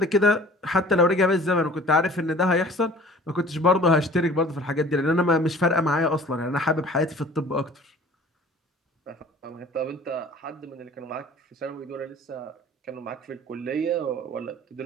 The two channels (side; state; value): both; normal; correlation 0.47